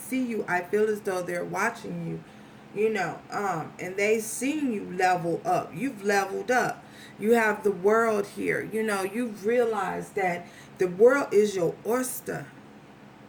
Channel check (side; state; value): both; identical; correlation 1.00